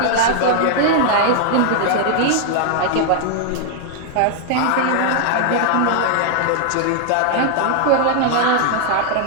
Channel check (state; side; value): different; both; correlation 0.00